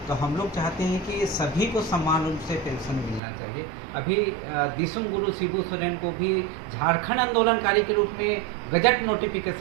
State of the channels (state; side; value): drops out; left; at 3.2 s